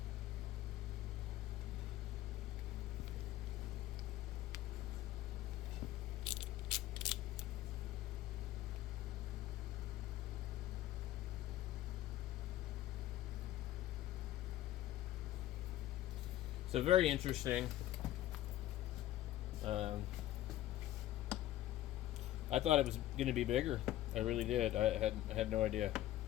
So very interesting. I thought it was going to be bigger. I really did. I had no idea.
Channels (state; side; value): quieter; right; 14.0 dB